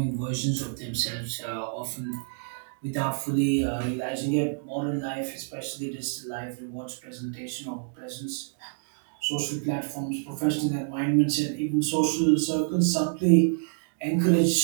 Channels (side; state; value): left; silent; digital silence